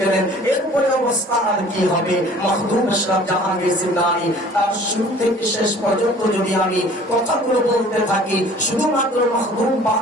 গেলেন, এরপরে অবস্থা আর কি হবে। মখদুম আশরাফ জাহাঙ্গীর জিন্নানী তার শুরু থেকে শেষ পর্যন্ত যদি আমি কথাগুলো বলতে থাকি, শুধুমাত্র মখদুম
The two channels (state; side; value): normal; both; correlation 0.50